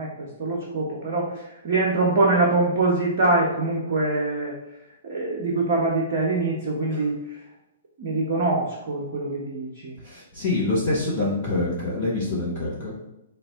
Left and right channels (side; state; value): both; inverted; correlation -0.36